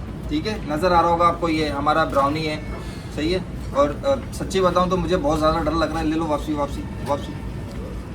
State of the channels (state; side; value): identical; both; correlation 1.00